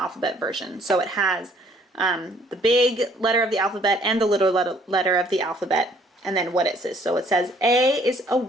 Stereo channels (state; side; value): normal; both; correlation 0.61